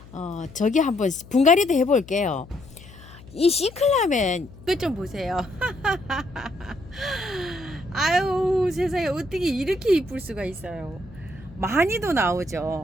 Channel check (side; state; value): left; noise; hum, 20 dB below the sound